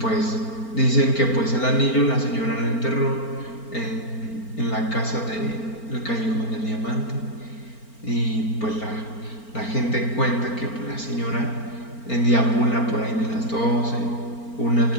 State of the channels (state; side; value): late; right; 4.4 ms